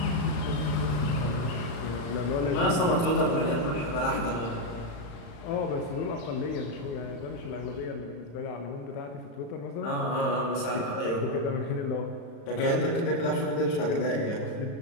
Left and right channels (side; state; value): right; late; 35 ms